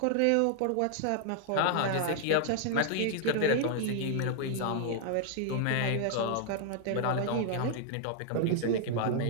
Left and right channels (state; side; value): different; both; correlation 0.00